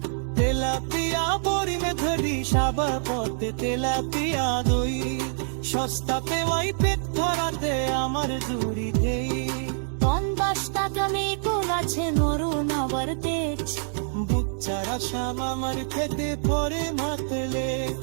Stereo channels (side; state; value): left; silent; digital silence